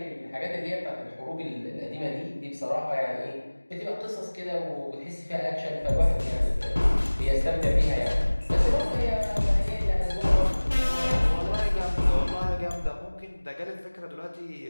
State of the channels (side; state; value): both; inverted; correlation -1.00